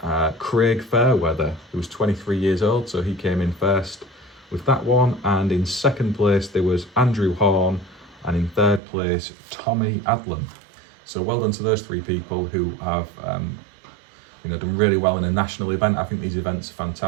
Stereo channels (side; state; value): left; drops out; at 8.8 s